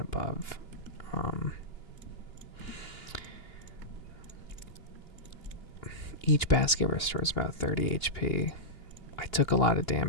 above, each basket restores about 30 HP. I took a lot of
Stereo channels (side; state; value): right; late; 2.9 ms